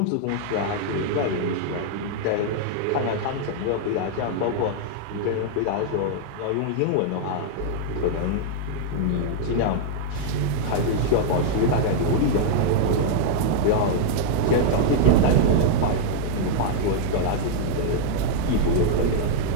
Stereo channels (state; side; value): different; both; correlation -0.01